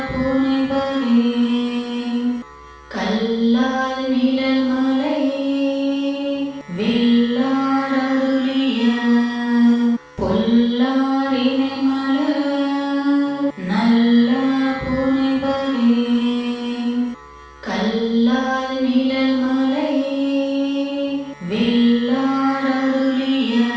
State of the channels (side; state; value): both; identical; correlation 1.00